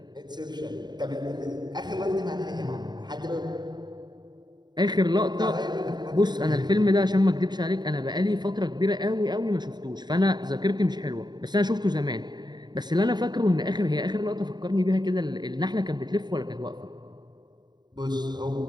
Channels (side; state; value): left; late; 0.21 ms